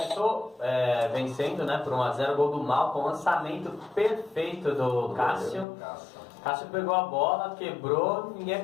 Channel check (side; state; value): right; drops out; at 5.7 s